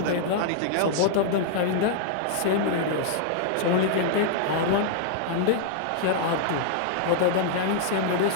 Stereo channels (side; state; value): both; different; correlation -0.01